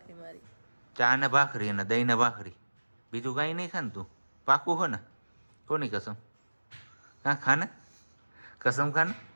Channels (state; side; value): inverted; both; correlation -1.00